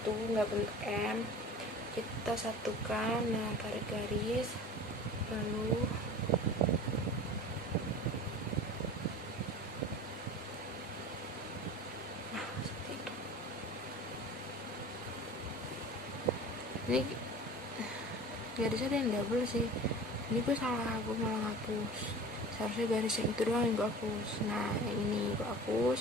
nggak bentuk M, kita satukan. Nah tarik garis, lalu seperti itu. Ini garisnya ada yang double sih. Ini gue salah, gue malah ngapus. Seharusnya garis yang itu doang yang gue hapus. Nah yang ini gue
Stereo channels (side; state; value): both; normal; correlation 0.38